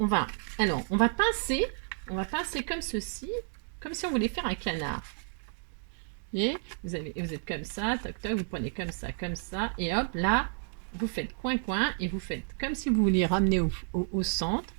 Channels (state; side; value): silent; left; 57 dB below the other